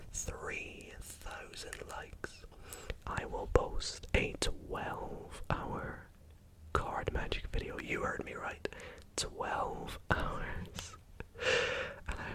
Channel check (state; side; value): identical; both; correlation 1.00